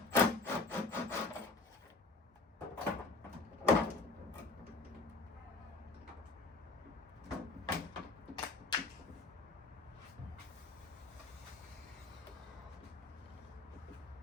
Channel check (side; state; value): right; quieter; 3.6 dB